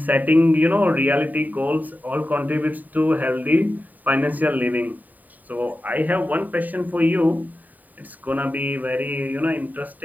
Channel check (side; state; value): left; late; 0.083 ms